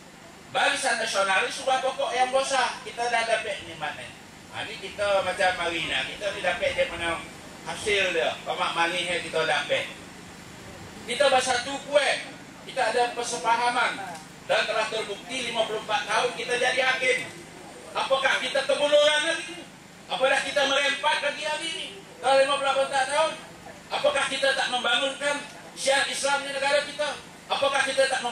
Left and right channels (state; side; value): identical; both; correlation 1.00